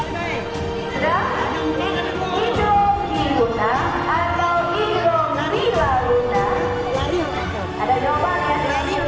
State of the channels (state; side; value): identical; both; correlation 1.00